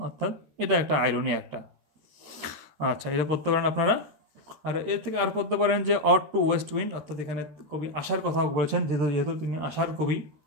অর্থাৎ এটা একটা আইরনি একটা। আচ্ছা, এটা পড়তে পারেন আপনারা। আর এর থেকে আর পড়তে পারেন যে অড টু ওয়েস্ট উইন্ড, অর্থাৎ এখানে কবি আশার কথা বলেছেন, যেহেতু তিনি আশার কবি।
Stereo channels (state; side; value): late; left; 13 ms